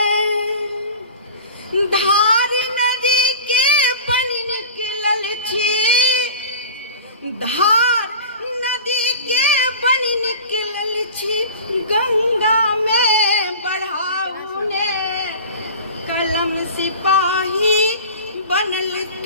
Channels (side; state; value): both; inverted; correlation -0.38